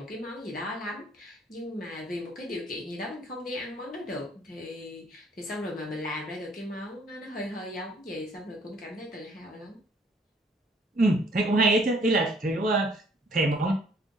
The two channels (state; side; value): normal; both; correlation 0.61